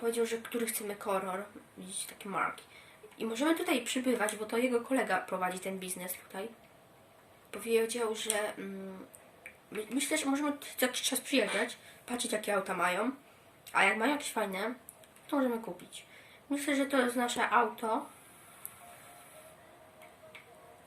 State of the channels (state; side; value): identical; both; correlation 1.00